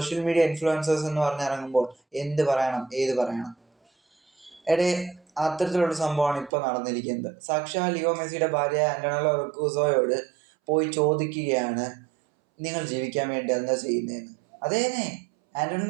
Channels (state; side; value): drops out; left; at 6.5 s